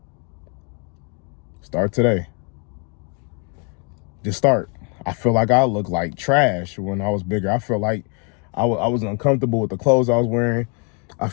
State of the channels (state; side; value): quieter; right; 36.7 dB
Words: Start today. Just start. I feel like I look like trash when I was bigger. I feel like I was uncomfortable with the clothes I was wearing. I